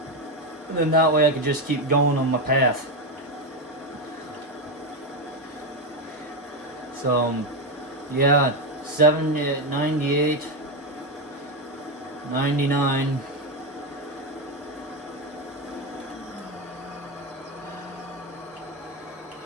then that way I could just keep going on my path. So, yeah, 98, 99.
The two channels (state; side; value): normal; both; correlation 0.10